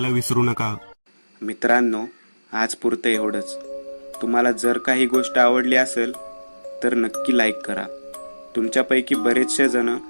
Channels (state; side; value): inverted; both; correlation -1.00